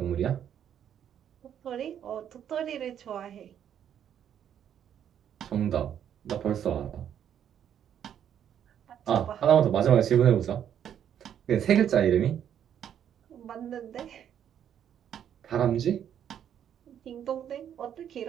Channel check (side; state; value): left; quieter; 9.5 dB